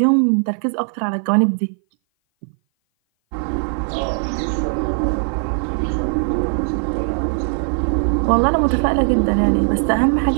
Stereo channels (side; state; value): left; silent; 58 dB below the other